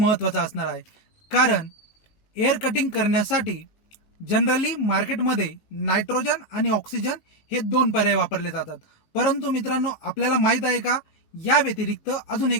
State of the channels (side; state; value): right; late; 18 ms